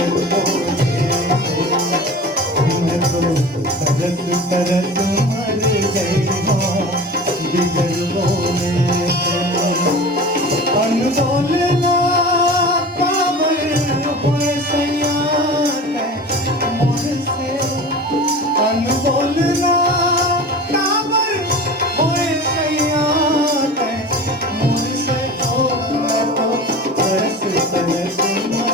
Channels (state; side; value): normal; both; correlation 0.35